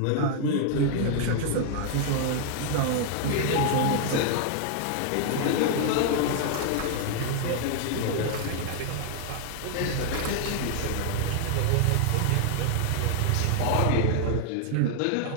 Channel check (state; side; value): different; both; correlation 0.00